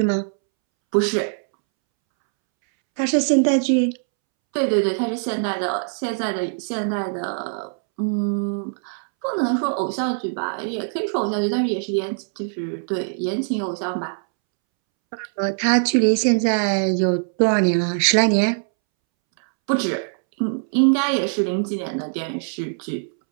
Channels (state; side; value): silent; left; 64 dB below the other